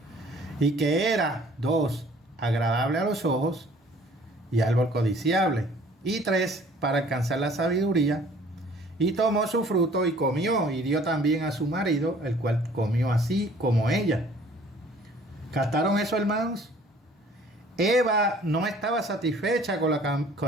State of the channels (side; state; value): both; normal; correlation 0.54